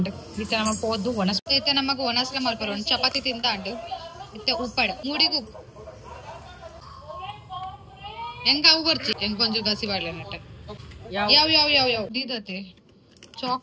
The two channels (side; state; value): both; identical; correlation 1.00